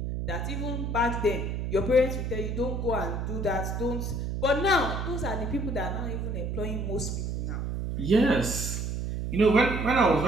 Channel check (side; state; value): right; noise; hum, 3 dB below the sound